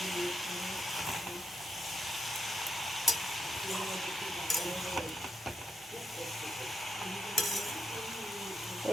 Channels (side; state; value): both; normal; correlation 0.81